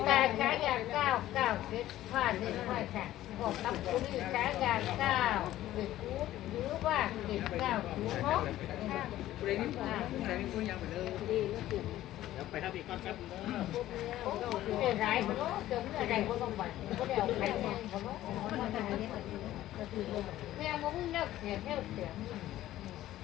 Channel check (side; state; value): right; quieter; 14.2 dB